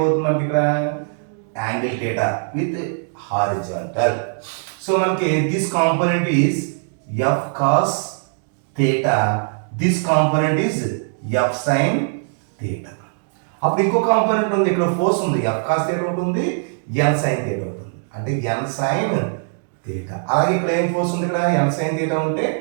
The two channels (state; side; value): silent; left; digital silence